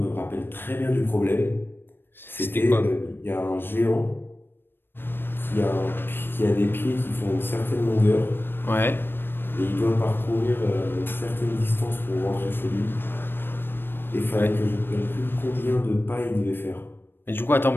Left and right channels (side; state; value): right; late; 0.10 ms